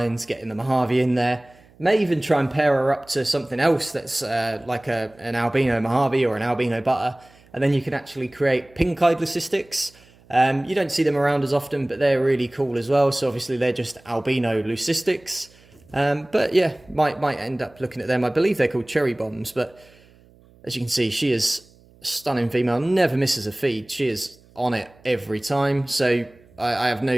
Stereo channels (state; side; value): noise; right; hum, 28 dB below the sound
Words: getting the Mojave in there. May even try and pair her up to something else that's like an albino Mojave or an albino butter, and then you can actually create pink-eyed leucistics. You don't see them around as often, but they're really cool as well. So obviously they're just albino leucistics. But yeah, might end up looking at them. I believe they're called cherry bombs, but as you can see, she is a stunning female, never misses a feed. She is on it every time. So I have no